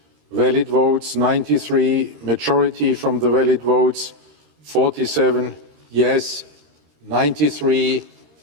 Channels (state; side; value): late; left; 13 ms